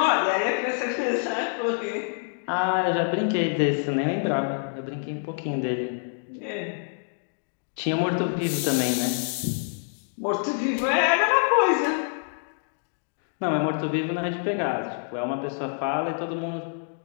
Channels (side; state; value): right; silent; digital silence